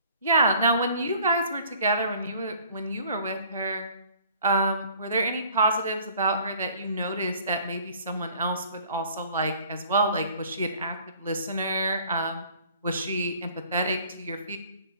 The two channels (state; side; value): inverted; both; correlation -0.53